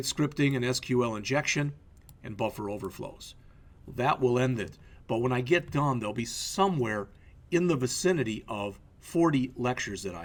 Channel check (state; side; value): identical; both; correlation 1.00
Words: scripting and SQL injection, and buffer overflows. That will end it. But when I get done, there'll be somewhere in the vicinity of 40 lectures that